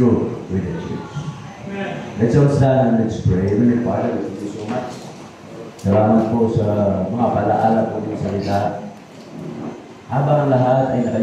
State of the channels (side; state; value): both; identical; correlation 1.00